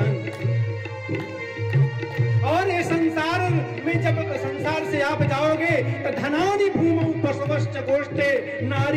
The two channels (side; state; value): both; identical; correlation 1.00